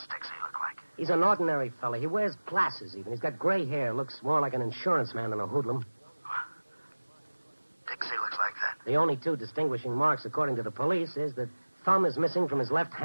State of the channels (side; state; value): both; inverted; correlation -1.00